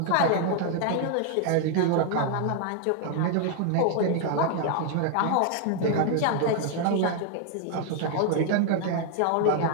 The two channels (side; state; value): both; different; correlation 0.00